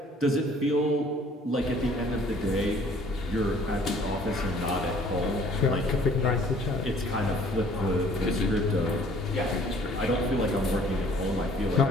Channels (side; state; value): both; normal; correlation 0.56